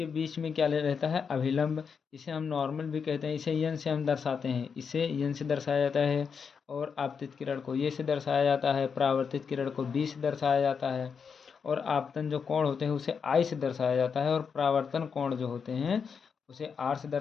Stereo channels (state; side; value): quieter; right; 6.2 dB